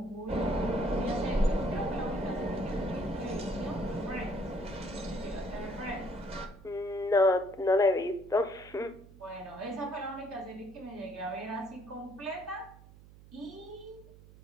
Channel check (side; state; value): right; noise; hum, 21 dB below the sound